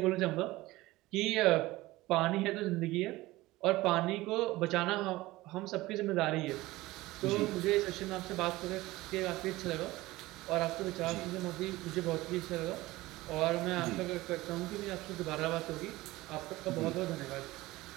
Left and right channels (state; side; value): quieter; left; 18.8 dB